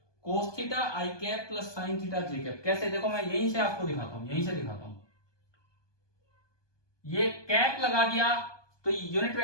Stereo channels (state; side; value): late; right; 1.2 ms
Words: cos theta I cap plus sine theta J cap. कैसे, देखो मैं यहीं से आपको दिखाता हूं, यहीं से दिखाता हूं। ये कैप लगा दिया तो यूनिट